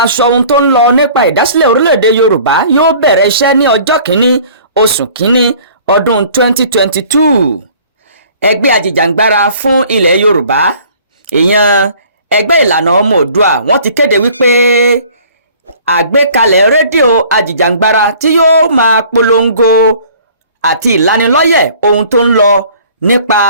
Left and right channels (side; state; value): both; inverted; correlation -0.51